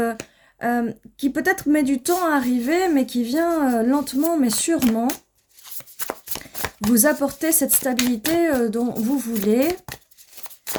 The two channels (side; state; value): both; identical; correlation 1.00